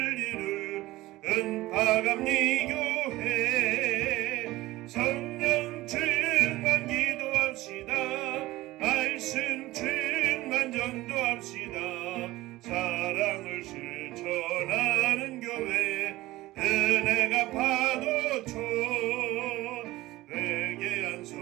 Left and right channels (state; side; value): quieter; left; 17.9 dB